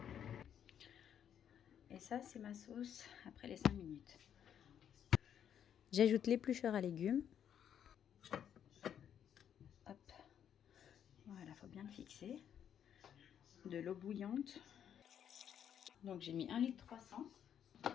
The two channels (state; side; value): quieter; right; 9.1 dB